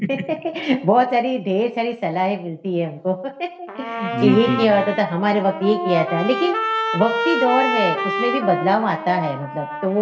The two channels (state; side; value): identical; both; correlation 1.00